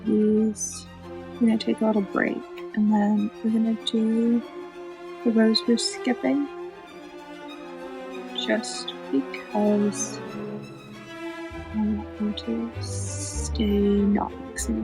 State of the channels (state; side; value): identical; both; correlation 1.00